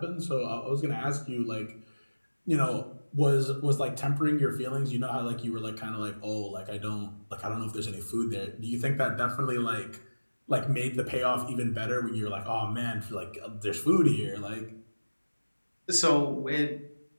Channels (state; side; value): inverted; both; correlation -1.00